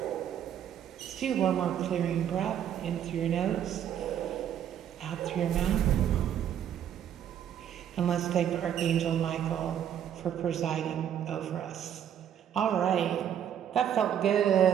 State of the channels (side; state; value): left; quieter; 9.7 dB